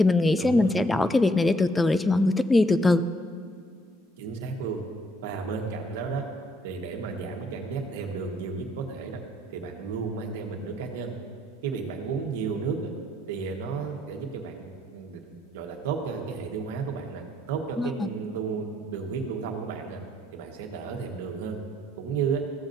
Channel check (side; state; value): both; normal; correlation 0.69